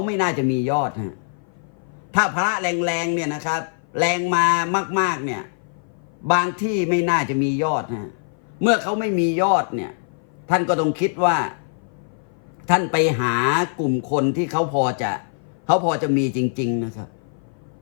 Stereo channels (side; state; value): right; silent; 56 dB below the other